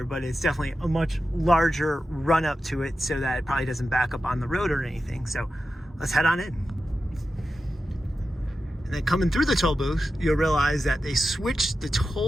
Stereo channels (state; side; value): normal; both; correlation 0.92